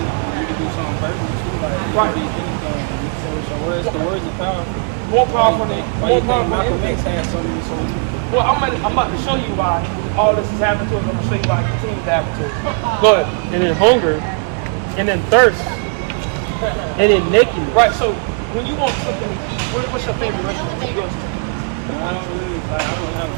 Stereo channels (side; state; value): left; quieter; 38.2 dB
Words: You can do something verbal too, like you Right. can do anything. You can say with your words, the words are powerful. More powerful than Why you think Malcolm X anything. had so many soldiers? Well, I'm about to show you why all this is happening to us. I'm gonna show you why it continues to happen to us. Go ahead. And then hunger, and then thirst, and then nakedness. Right. So when you want something to eat, what's your favorite restaurant? Where you go to? I don't have